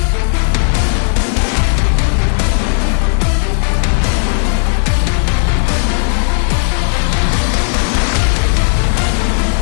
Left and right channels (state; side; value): silent; right; digital silence